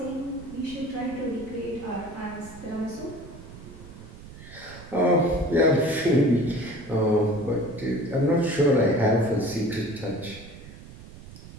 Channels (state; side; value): noise; right; rumble, 16 dB below the sound